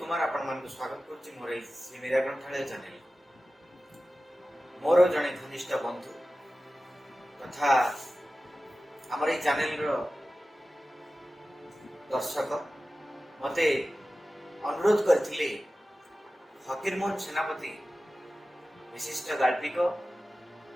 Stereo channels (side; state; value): both; normal; correlation 0.95